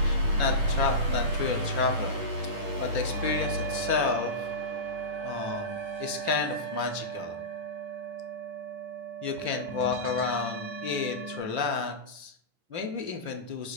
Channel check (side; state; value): left; late; 10 ms